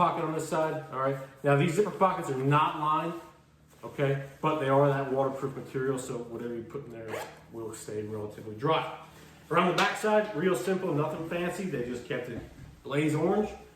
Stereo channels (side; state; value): both; identical; correlation 1.00